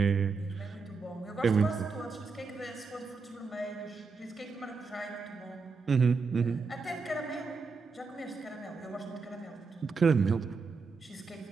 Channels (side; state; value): left; quieter; 4.7 dB